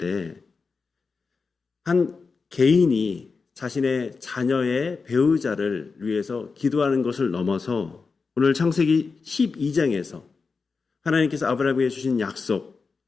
한 개인이 자신의 자녀의 배우자를 위해서 기도하는 것을 넘어서 오늘 창세기 12장에서 하나님께서 아브라함에게 주신 약속,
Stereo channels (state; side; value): quieter; right; 4.7 dB